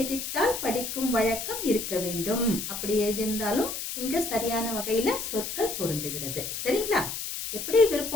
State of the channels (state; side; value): noise; left; hiss, 5 dB below the sound